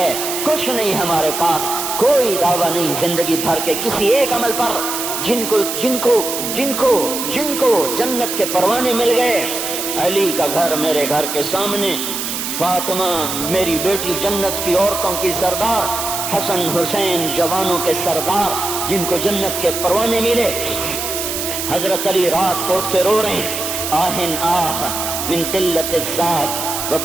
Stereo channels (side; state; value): right; noise; hiss, 4 dB below the sound